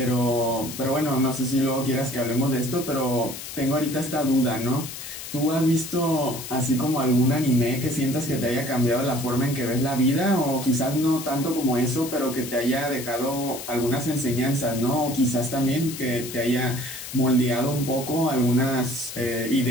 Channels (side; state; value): left; noise; hiss, 10 dB below the sound